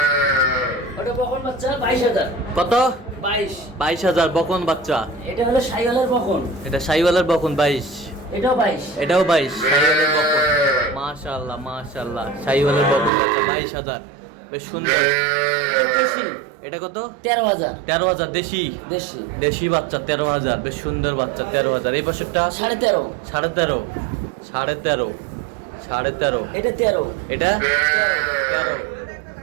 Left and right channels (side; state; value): left; drops out; at 13.1 s